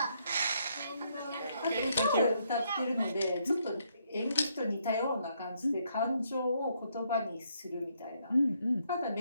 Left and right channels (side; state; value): both; inverted; correlation -0.73